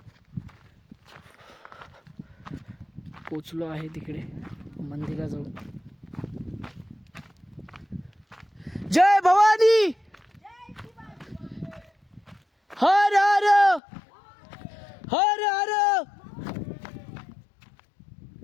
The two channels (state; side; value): drops out; right; at 13.8 s